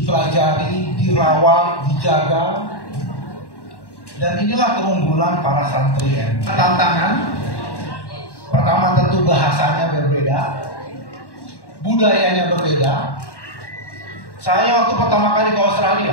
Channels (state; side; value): late; right; 1.1 ms